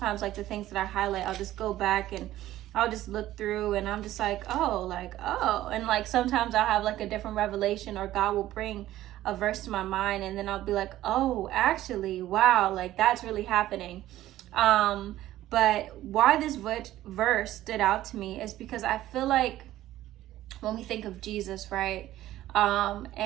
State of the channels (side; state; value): left; quieter; 14.4 dB